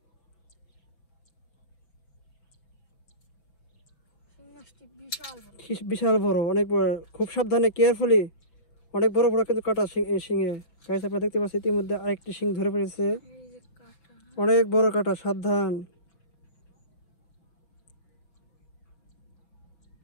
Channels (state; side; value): late; right; 6.0 ms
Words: বিশাল বড়, অনেক বড়, খুব সাবধানে কেয়ারফুলি, অনেক বড় কিন্তু কাটা শিঙে। গাছ আপনারা দেখতে পাচ্ছেন ইতিমধ্যে আরেকটি শিং ধরে পড়েছে, অনেক বড় কাটা, সাবধান।